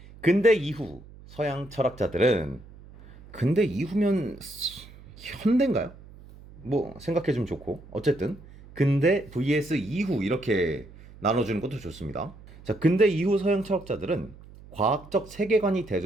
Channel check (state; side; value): noise; right; hum, 20 dB below the sound